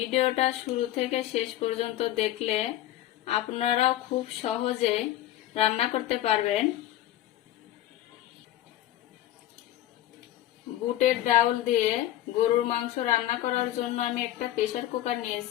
শুরু থেকে শেষ পর্যন্ত দেখলে আপনারাও খুব সহজে রান্না করতে পারবেন। বুটের ডাউল দিয়ে গরুর মাংস রান্না করার জন্য আমি একটা প্রেসার কুকার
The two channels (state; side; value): quieter; right; 13.7 dB